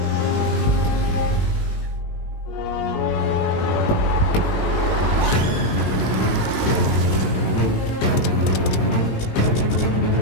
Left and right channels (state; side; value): late; right; 20 ms